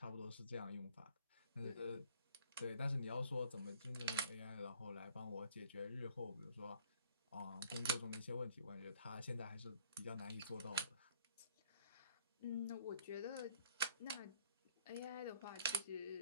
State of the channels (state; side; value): inverted; both; correlation -0.59